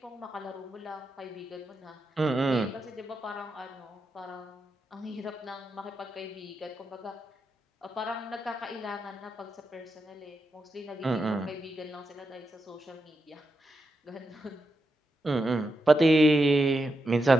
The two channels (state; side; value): normal; both; correlation 0.86